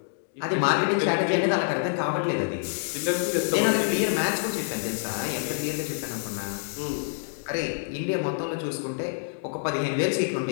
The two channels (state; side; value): silent; right; digital silence